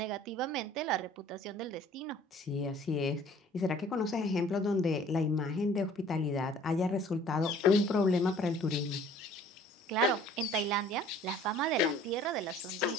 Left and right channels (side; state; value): both; normal; correlation 0.52